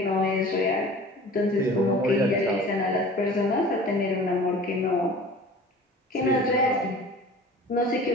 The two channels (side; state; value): both; normal; correlation 0.42